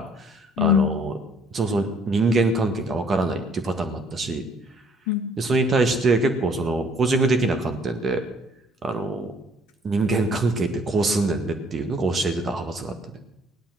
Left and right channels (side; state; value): both; normal; correlation 0.61